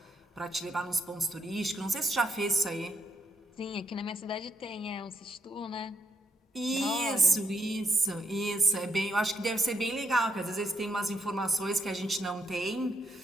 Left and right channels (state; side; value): normal; both; correlation 0.75